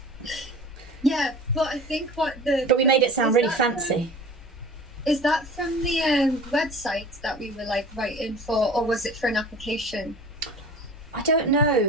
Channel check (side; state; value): both; normal; correlation 0.40